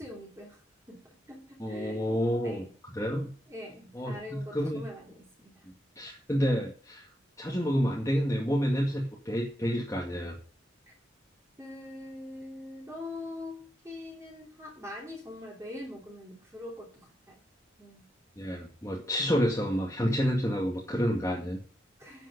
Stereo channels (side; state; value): both; normal; correlation 0.84